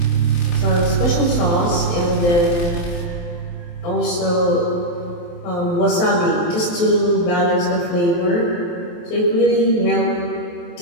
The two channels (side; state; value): right; late; 23 ms